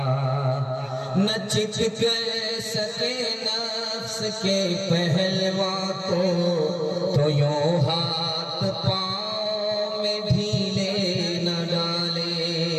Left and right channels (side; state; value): both; identical; correlation 1.00